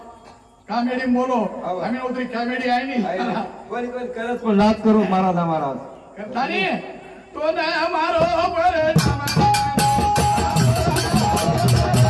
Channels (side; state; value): both; identical; correlation 1.00